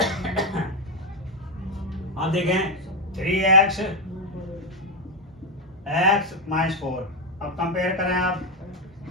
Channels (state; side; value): normal; both; correlation 0.07